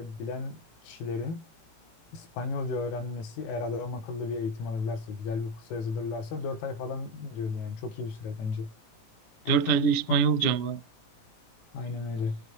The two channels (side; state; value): right; late; 17 ms